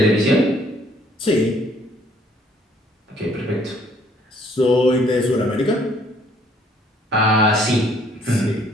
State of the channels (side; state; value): both; normal; correlation 0.62